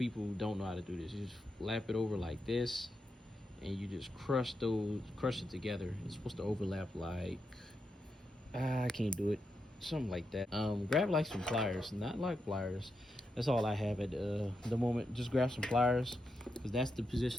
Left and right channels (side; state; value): both; normal; correlation 0.85